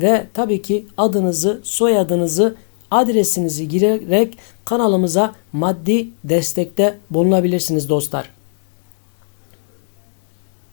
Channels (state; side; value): silent; right; digital silence